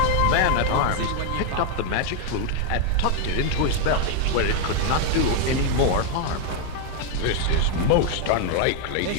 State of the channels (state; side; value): different; both; correlation 0.01